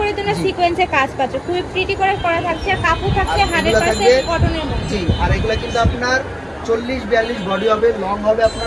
তোমরা সিকোয়েন্সে কাজ পাচ্ছ, খুব প্রিটি করে করা থাকছে। কাপড় থাকছে 100% কটনের মধ্যে। জি, আর এগুলা কিন্তু আপনার 40-42 বডি হবে, লং হবে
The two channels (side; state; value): both; identical; correlation 1.00